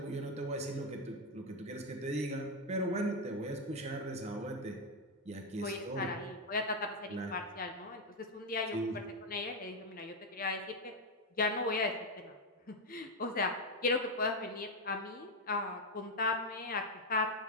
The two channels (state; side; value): normal; both; correlation 0.04